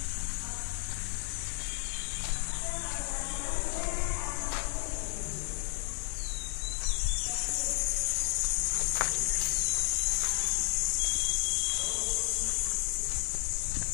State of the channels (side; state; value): right; silent; 56 dB below the other